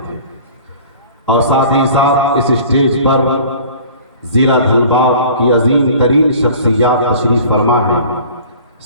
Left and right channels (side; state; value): both; inverted; correlation -0.46